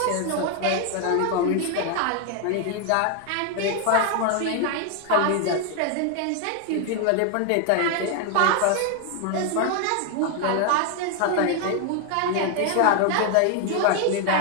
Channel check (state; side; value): different; both; correlation 0.01